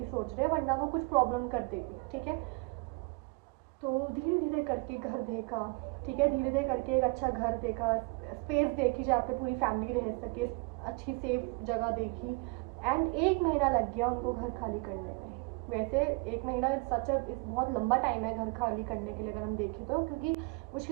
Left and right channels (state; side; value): quieter; left; 29.2 dB